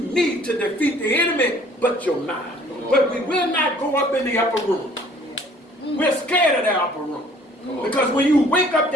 to defeat the enemy but your mind. But we will not go up in the upper room. We're scared of that upper room. Because when you wake up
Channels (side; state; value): both; normal; correlation 0.55